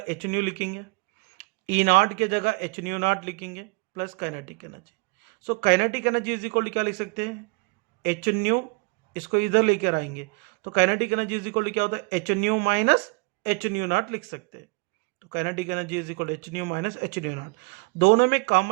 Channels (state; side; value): quieter; left; 29.3 dB